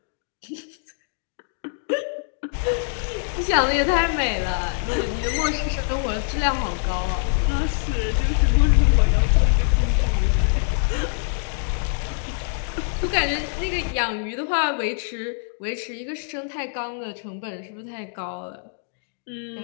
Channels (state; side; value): silent; right; digital silence